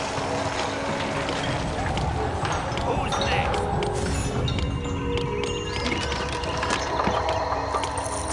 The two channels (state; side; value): identical; both; correlation 1.00